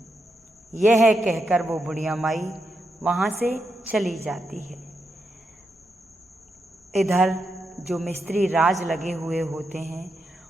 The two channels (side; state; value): both; normal; correlation 0.84